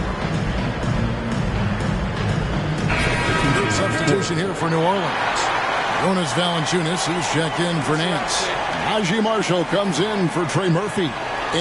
Good substitution here for New Orleans. Jonas Valanciunas, who's checked in for Nance. Najee Marshall comes in for Trey Murphy.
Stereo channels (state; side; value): identical; both; correlation 1.00